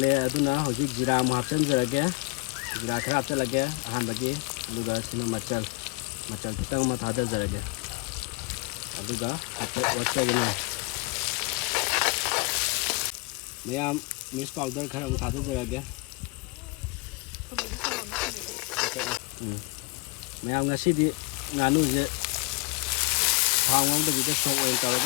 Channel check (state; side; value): quieter; right; 27.9 dB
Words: itu nah, hujung jira muhafsan jeraga, jira kerap jeraga, ahan bagi, juga sini macam kita mah ada jeraga, juga apa wajah ini, Mayam miss powder kerap ada jeraga, Mayam ngasih di Nganu je, hangong tu kita sok kalau